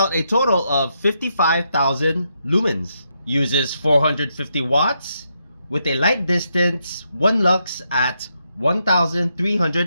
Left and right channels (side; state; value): both; inverted; correlation -0.80